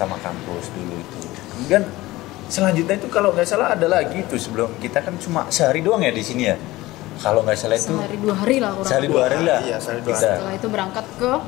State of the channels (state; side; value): quieter; right; 18.5 dB